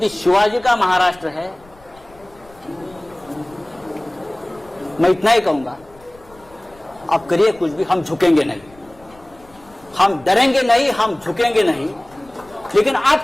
शिवाजी का महाराष्ट्र है। मैं इतना ही कहूंगा, आप करिए कुछ भी, हम झुकेंगे नहीं, हम डरेंगे नहीं, हम झुकेंगे नहीं, लेकिन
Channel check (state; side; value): noise; left; rumble, 26 dB below the sound